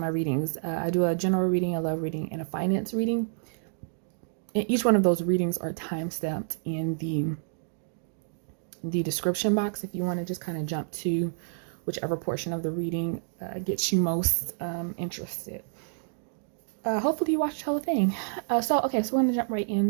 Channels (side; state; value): left; silent; digital silence